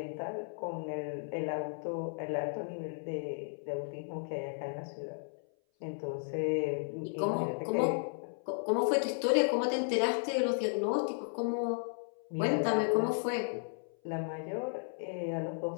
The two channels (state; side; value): silent; right; 55 dB below the other